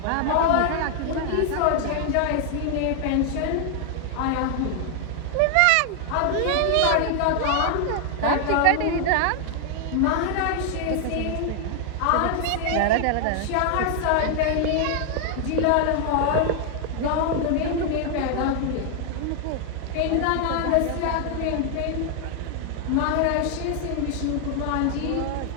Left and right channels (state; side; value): different; both; correlation 0.00